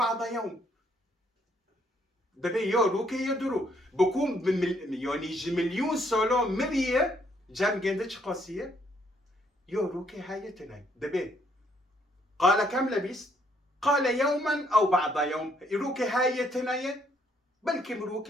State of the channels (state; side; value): normal; both; correlation 0.70